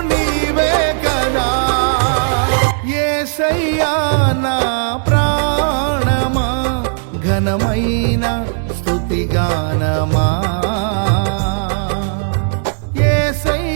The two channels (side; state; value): left; silent; digital silence